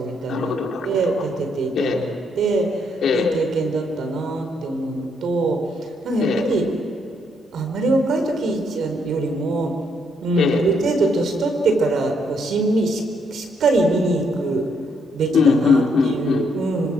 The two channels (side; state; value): both; normal; correlation 0.73